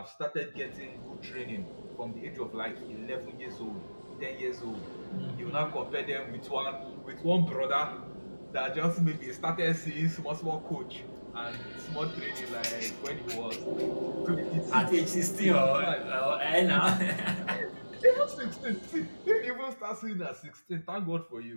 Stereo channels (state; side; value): inverted; both; correlation -1.00